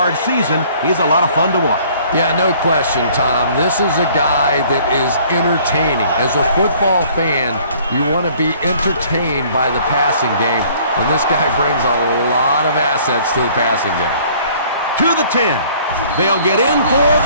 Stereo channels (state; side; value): inverted; both; correlation -0.56